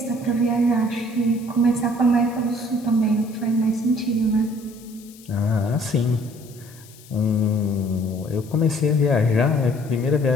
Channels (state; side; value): noise; left; hiss, 23 dB below the sound